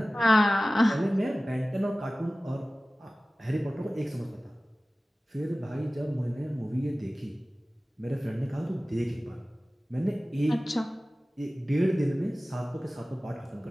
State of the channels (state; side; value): normal; both; correlation 0.97